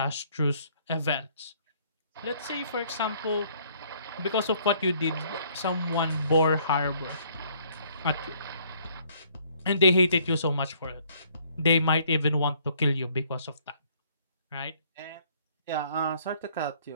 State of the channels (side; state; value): both; inverted; correlation -0.62